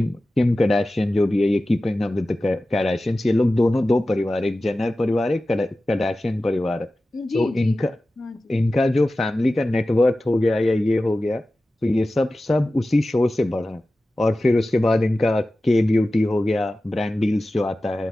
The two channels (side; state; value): both; normal; correlation 0.95